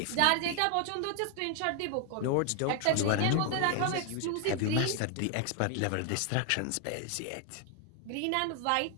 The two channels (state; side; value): different; both; correlation 0.00